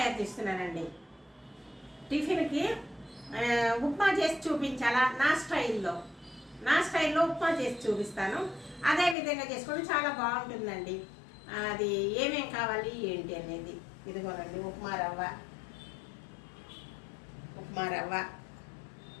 చేస్తున్నానండి. టిఫిన్కి ఉప్మా చేసి చూపించాలా, నా స్టైల్లో ఉప్మా చేసి చూపిస్తాను. అదే విధంగా చేసుకొని చాలా బాగుంటుందండి. అది ఏమేం కావాలి ఏంటి అనేది ఇదిగోనండి. ఉప్మా రవ్వ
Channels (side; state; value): right; drops out; at 9.2 s